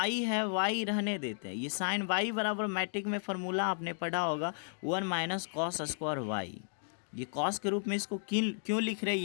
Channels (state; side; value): silent; right; digital silence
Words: है, y रहने देते हैं, ये साइन y बराबर मैट्रिक में फार्मूला आपने पढ़ा होगा 1 माइनस कॉस स्क्वायर y, ये कॉस के रूप में इसको क्यों लिख रहे हैं